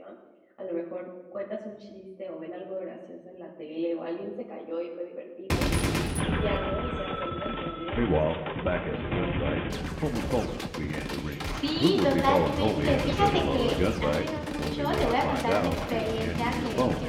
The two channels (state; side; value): identical; both; correlation 1.00